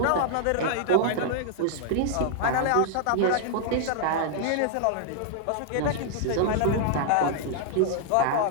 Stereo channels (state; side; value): different; both; correlation -0.01